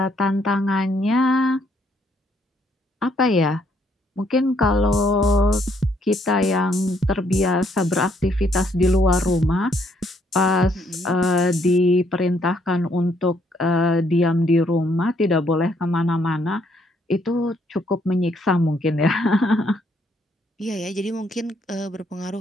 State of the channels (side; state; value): both; normal; correlation 0.69